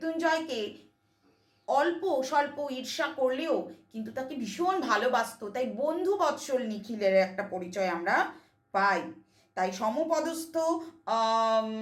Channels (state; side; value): identical; both; correlation 1.00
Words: অল্প স্বল্প ঈর্ষা করলেও কিন্তু তাকে ভীষণ ভালোবাসতো। তাই বন্ধু বৎসল নিখিলের একটা পরিচয় আমরা পাই। তাই সমপদস্থ